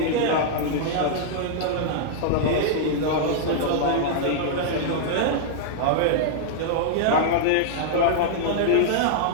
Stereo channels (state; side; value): different; both; correlation -0.01